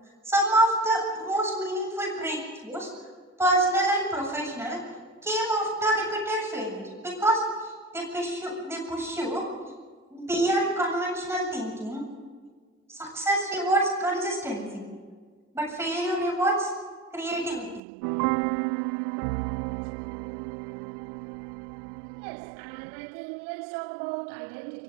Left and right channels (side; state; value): left; drops out; at 17.8 s